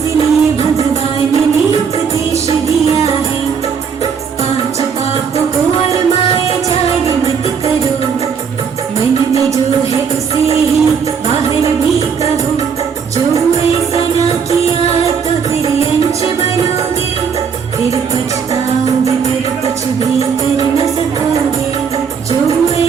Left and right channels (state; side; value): quieter; left; 6.5 dB